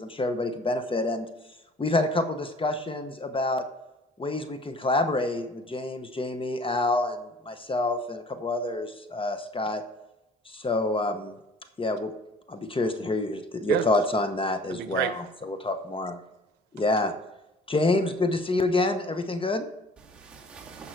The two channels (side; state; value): both; normal; correlation 0.50